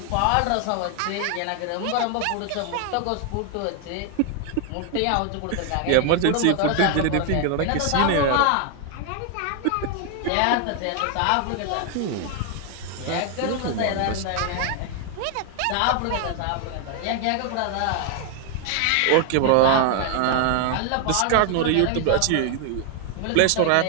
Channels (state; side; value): different; both; correlation 0.00